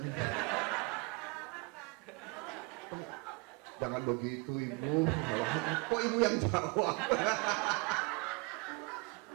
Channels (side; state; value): left; quieter; 29.8 dB